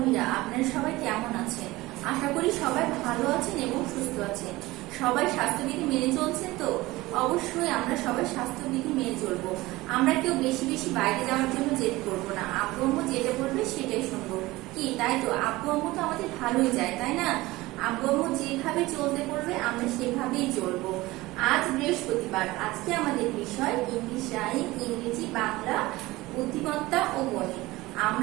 আপনারা সবাই কেমন আছেন? আশা করি সবাই ভালো আছেন এবং সুস্থ আছেন। সবাই স্বাস্থ্যবিধি মেনে চলছেন তো? অবশ্যই আমরা সবাই স্বাস্থ্যবিধি মেনে চলবো। আমরা কেউ বেশি বেশি বাইরে যাওয়ার জন্য জেদ করবো না। আব্বু আম্মু যেটা বলবে সেটাই শুনবো। কি তাই তো? আব্বু আম্মু তো আমাদের ভালোই যায়, তাই না? আব্বু আম্মু যেভাবে চলতে বলবে আমরা সেভাবেই চলবো। আজ বৃহস্পতিবার, আজকে আমাদের বিষয় ইংলিশ রাইম, ইংরেজি, বাংলা, বুদ্ধিমত্তা ও গণিত।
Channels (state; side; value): quieter; left; 19.6 dB